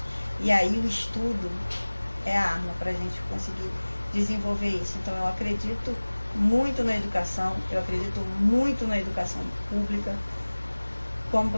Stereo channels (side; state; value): both; inverted; correlation -1.00